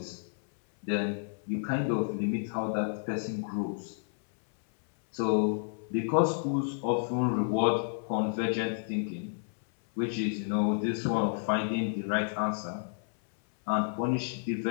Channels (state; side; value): silent; right; 57 dB below the other